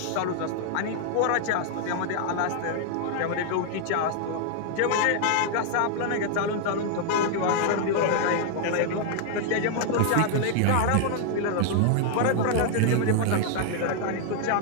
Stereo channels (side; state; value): both; different; correlation 0.00